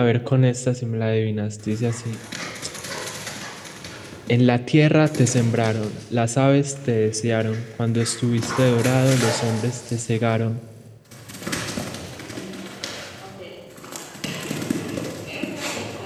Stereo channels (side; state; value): both; identical; correlation 1.00